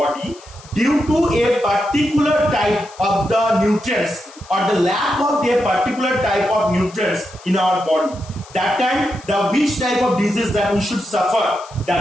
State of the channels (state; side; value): noise; left; hiss, 22 dB below the sound